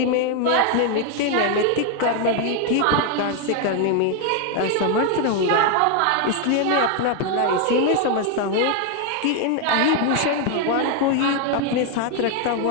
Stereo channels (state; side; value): different; both; correlation 0.01